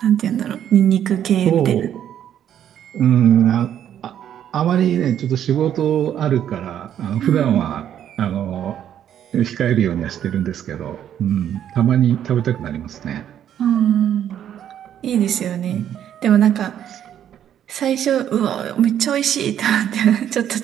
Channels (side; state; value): left; quieter; 10.1 dB